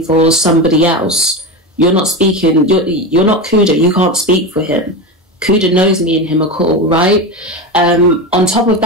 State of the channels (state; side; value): normal; both; correlation 0.20